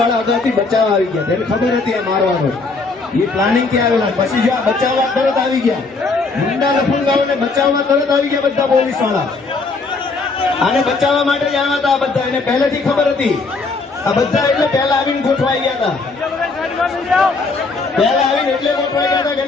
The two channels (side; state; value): right; quieter; 3.9 dB